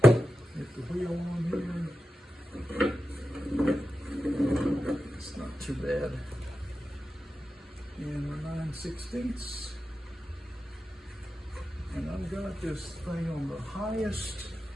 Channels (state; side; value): normal; both; correlation 0.91